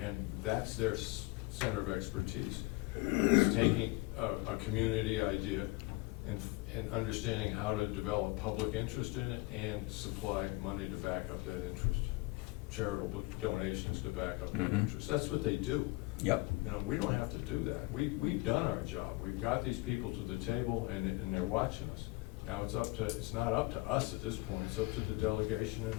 that's their center of expertise, is taking a community idea and understanding how to develop public interest in it and supply money to back up that interest, charitable donations to back up that interest. That's what they do. Yep. You know, we don't have to do that. We've done our job. We've got these people to the table, and they're watching us. Now it's not up to us at this point. It's up to the delegation and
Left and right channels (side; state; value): right; quieter; 23.1 dB